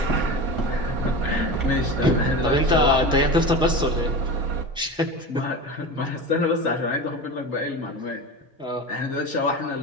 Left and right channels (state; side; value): normal; both; correlation 0.28